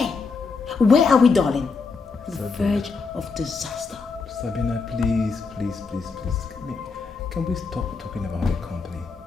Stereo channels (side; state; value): right; quieter; 4.6 dB